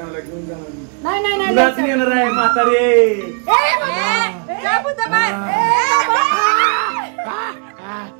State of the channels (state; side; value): quieter; left; 38.8 dB